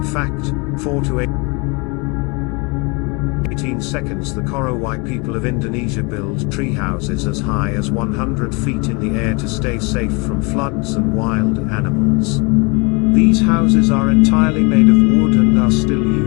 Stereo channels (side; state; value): right; quieter; 29.7 dB